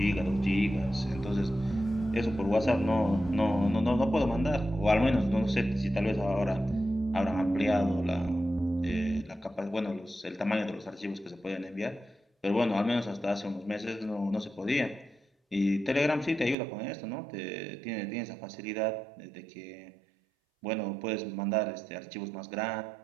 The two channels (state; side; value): drops out; left; at 16.6 s